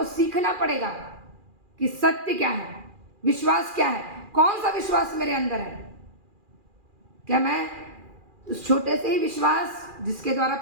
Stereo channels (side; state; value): left; late; 2.4 ms